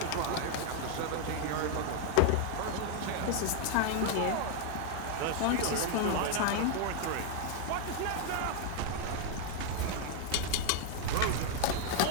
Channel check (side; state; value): both; different; correlation 0.00